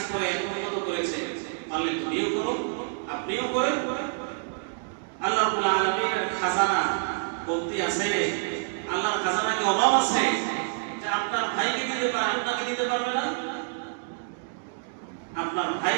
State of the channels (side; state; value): left; silent; digital silence